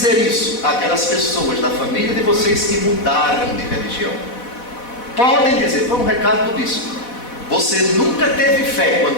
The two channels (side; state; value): right; late; 4.1 ms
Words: isso aquelas pessoas da família de vocês que mudaram de religião. Podem dizer: foi um recado do bispo, você nunca teve fé